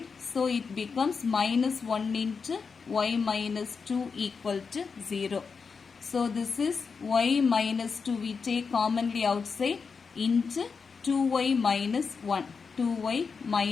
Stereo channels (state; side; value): quieter; right; 5.3 dB